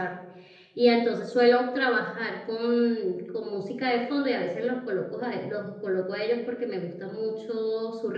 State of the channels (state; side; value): identical; both; correlation 1.00